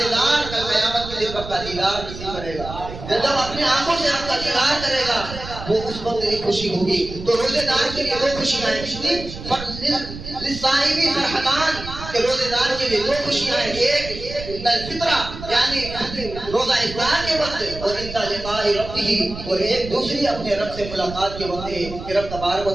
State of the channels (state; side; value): noise; right; rumble, 11 dB below the sound